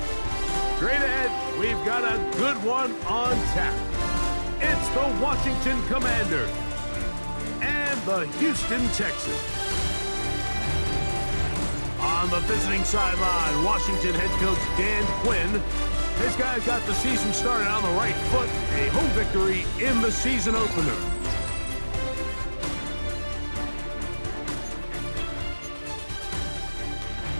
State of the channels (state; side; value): inverted; both; correlation -1.00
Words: Straight ahead, we've got a good one on tap. It's the Washington Commanders and the Houston Texans. On the visiting sideline, Washington head coach Dan Quinn. His guys got the season started on the right foot, a home victory in the season opener.